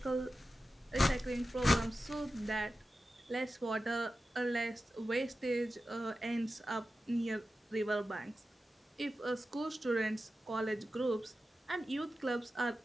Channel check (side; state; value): both; normal; correlation 0.93